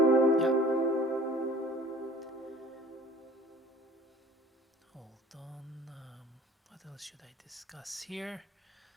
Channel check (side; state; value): both; normal; correlation 0.48